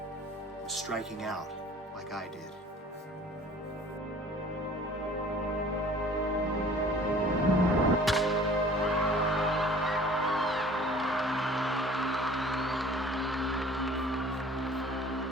and striking out like I did.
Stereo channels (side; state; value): both; normal; correlation 0.49